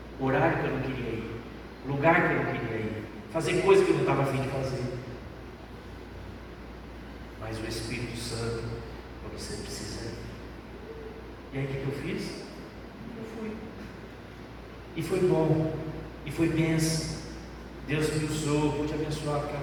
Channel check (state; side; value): identical; both; correlation 1.00